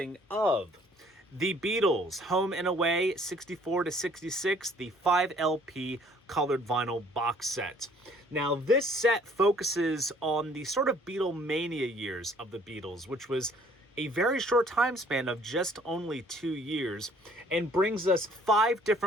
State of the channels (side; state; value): both; normal; correlation 0.58